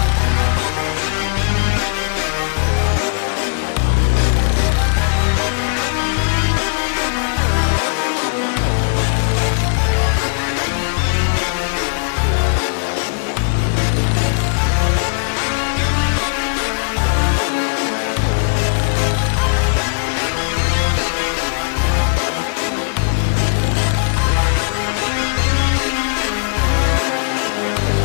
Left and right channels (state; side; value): silent; right; 63 dB below the other